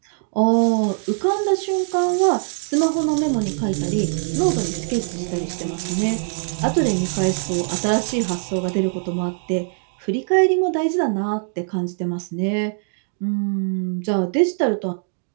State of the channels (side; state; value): left; silent; 61 dB below the other